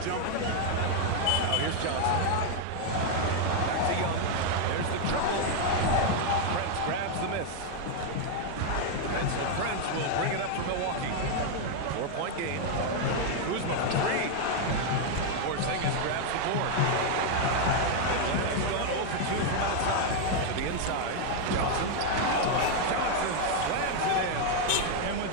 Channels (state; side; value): different; both; correlation 0.01